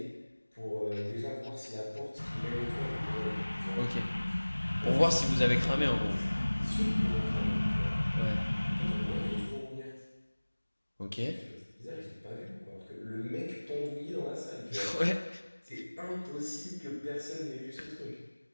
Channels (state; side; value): inverted; both; correlation -1.00